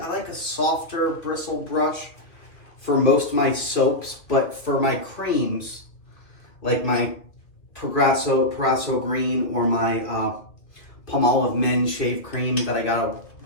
like a softer bristle brush for most of my soaps, but for my creams, like my Proraso Green or my Palmolive Men Shave Cream that I got a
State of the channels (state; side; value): late; right; 2.3 ms